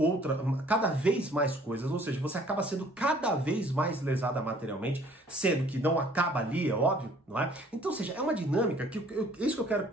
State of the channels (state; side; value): normal; both; correlation 0.56